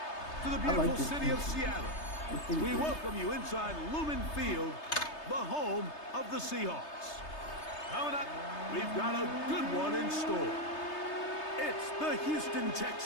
to the I like beautiful this city team. of Seattle. We good. welcome you inside Lumen Field, the home of the Seahawks. Coming up, we've got a good one in store. It's the Houston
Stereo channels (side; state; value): right; late; 3.3 ms